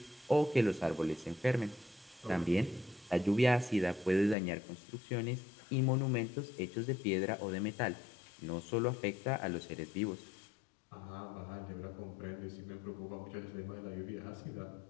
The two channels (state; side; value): drops out; right; at 4.4 s